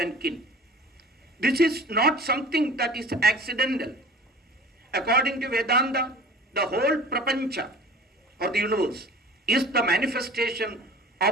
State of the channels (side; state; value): both; normal; correlation 0.43